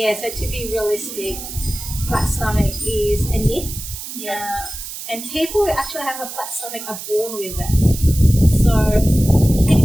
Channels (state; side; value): noise; right; hiss, 10 dB below the sound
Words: so to be realistic, flat stomach is a myth. And people who actually have a flat stomach are born with it. So you